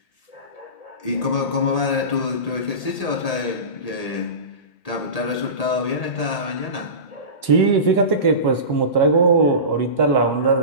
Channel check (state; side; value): late; right; 1.8 ms